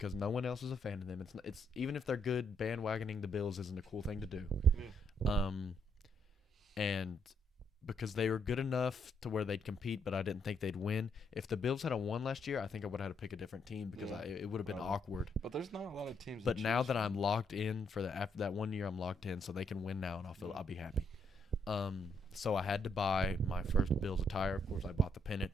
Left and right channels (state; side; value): normal; both; correlation 0.75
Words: no one else is a fan of them. It's even if they're good, bandwagoning the Bills isn't a cool thing to do. Yeah. And because they were good enough to where they'd compete, but I didn't think they'd win. If the Bills had won last year, I think I would have had to pick a different team because it would have been awkward. But there's not a lot of teams. But now that I'm locked in after that 1 year, I'm locked in, so they can win now, and I'll be happy. So I had to buy my first Bills attire. Of course, I bought the